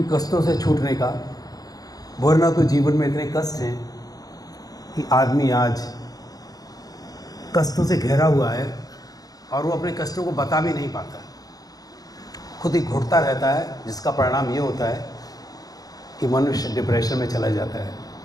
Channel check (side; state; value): right; late; 0.18 ms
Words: कष्टों से छूटने का। वरना तो जीवन में इतने कष्ट हैं कि आदमी आज कष्टों से घिरा हुआ है और वो अपने कष्टों को बता भी नहीं पाता, खुद ही घुटता रहता है, जिसका परिणाम ये होता है कि मनुष्य डिप्रेशन में चला जाता है।